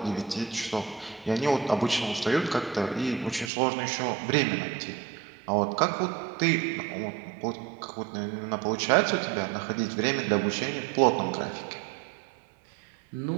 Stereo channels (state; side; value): drops out; left; at 3.5 s